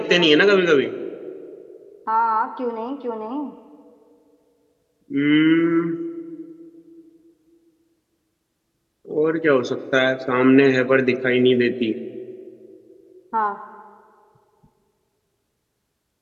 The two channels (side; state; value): both; identical; correlation 1.00